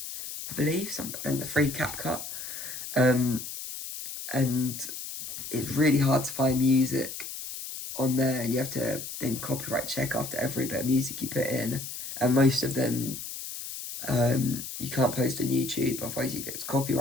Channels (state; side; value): noise; left; hiss, 8 dB below the sound